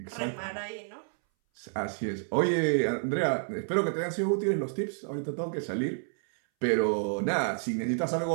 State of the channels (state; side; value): silent; left; 58 dB below the other